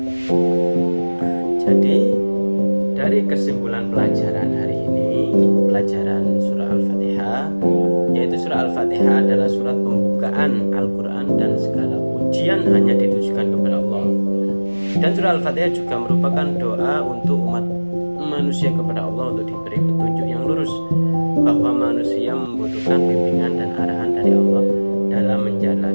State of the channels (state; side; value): inverted; both; correlation -1.00